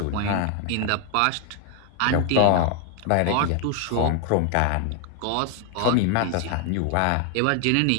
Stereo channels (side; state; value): both; different; correlation 0.00